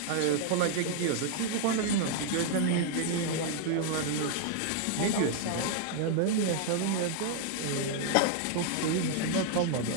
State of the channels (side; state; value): both; different; correlation 0.00